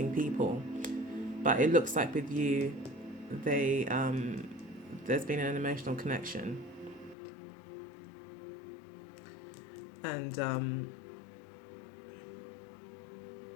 people. But it looks like with you, there's been an emotional connection. And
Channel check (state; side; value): drops out; right; at 7.2 s